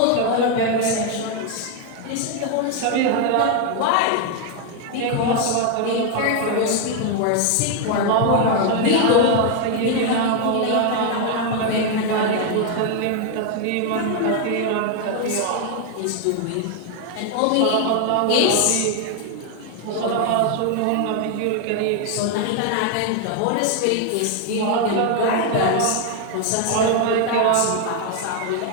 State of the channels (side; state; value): both; different; correlation 0.00